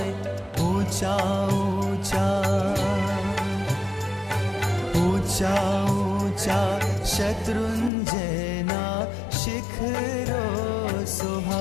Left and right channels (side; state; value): right; drops out; at 7.9 s